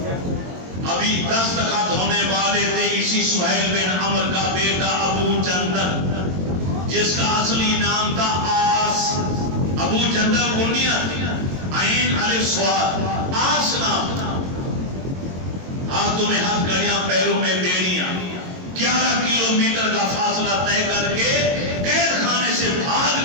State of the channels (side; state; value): left; late; 22 ms